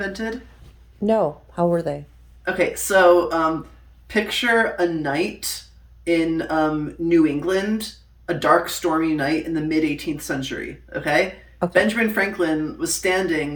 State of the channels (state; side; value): identical; both; correlation 1.00